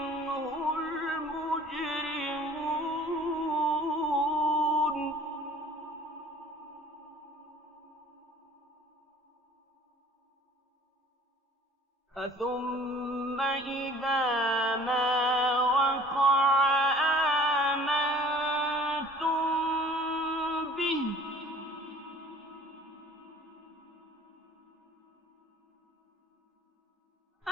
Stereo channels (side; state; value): both; normal; correlation 0.50